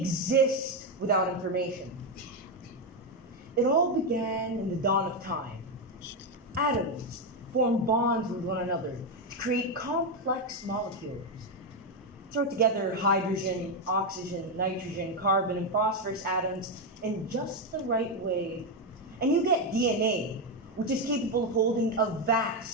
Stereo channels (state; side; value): normal; both; correlation 0.06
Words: without information. It all began in the dawn of time. Atoms formed bonds with one another to create complex molecules. Throw together hydrogen, oxygen, nitrogen, carbon, and phosphorus atoms in just the right way, and you get DNA, which is capable of holding a